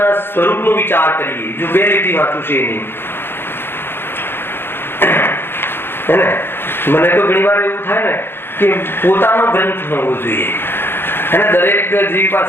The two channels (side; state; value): right; late; 0.11 ms